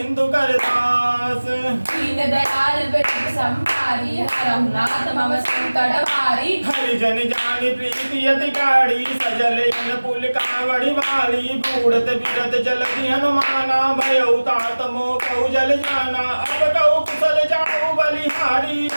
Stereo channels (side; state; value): both; inverted; correlation -1.00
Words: कर दास दीन दयाल विरद संभारी हरहु नाथ मम संकट भारी हरिजन जानी प्रीति यति गाड़ी सजल इन पुल कावड़ी वाली बूढ़त बिरत जलधि हनुमाना भयउ तात मोह कहु जल जाना अब कहु कुशल जाऊ बलिहारी